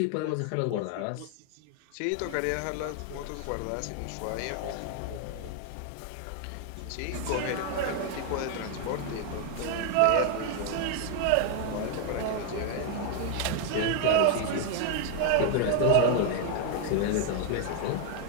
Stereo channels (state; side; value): different; both; correlation 0.00